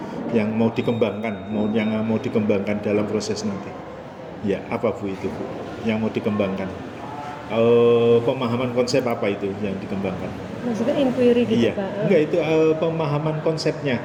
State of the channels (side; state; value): both; identical; correlation 1.00